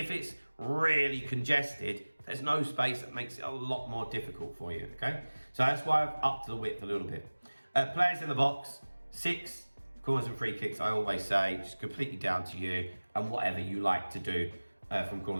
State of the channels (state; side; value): inverted; both; correlation -1.00